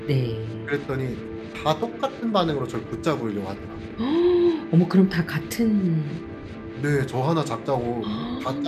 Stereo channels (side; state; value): both; identical; correlation 1.00